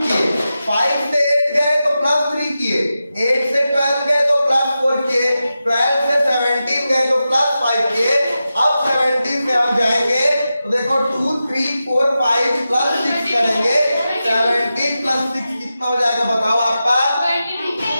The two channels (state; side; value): inverted; both; correlation -0.91